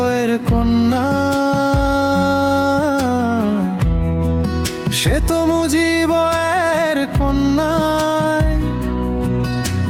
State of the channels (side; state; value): both; identical; correlation 1.00